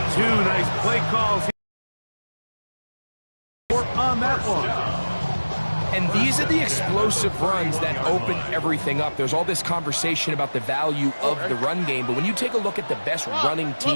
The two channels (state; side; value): inverted; both; correlation -1.00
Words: Two nice play calls on that one. And these are the explosive runs that open everything up. There's all this conversation about the value of the run game, but when you take a look at the best running